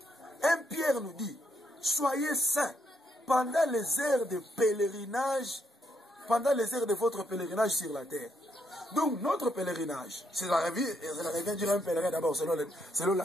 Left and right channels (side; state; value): both; normal; correlation 0.76